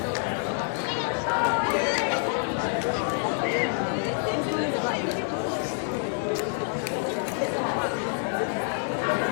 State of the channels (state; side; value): silent; right; 60 dB below the other